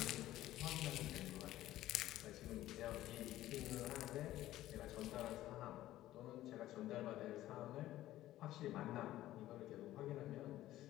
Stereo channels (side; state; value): right; quieter; 14.6 dB